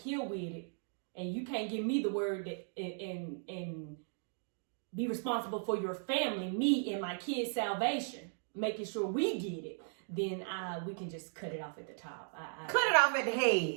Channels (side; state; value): left; silent; digital silence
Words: with it and you can't give me the word that, and be responsible for your family, me and my kids' salvation, making sure we get it, then we can just cut it off at the top. Cut it off at the